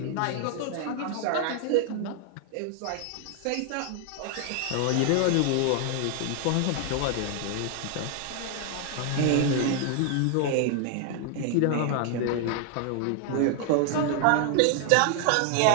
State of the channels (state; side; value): different; both; correlation 0.00